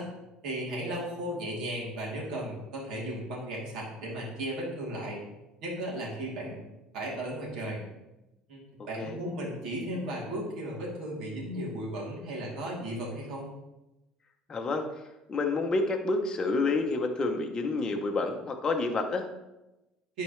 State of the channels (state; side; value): normal; both; correlation 0.52